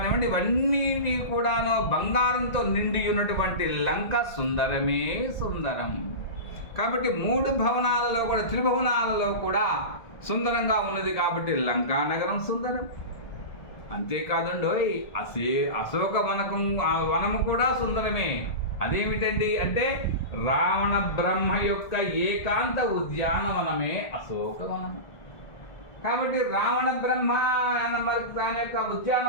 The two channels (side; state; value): right; late; 1.7 ms